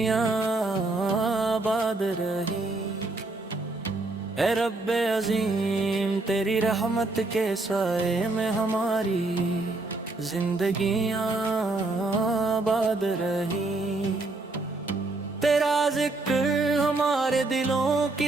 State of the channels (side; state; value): left; quieter; 3.1 dB